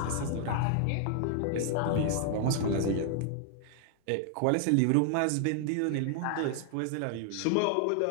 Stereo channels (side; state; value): both; different; correlation 0.00